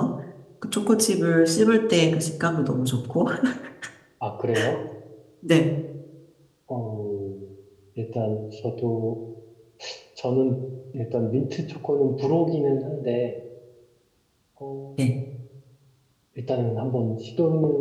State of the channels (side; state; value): both; identical; correlation 1.00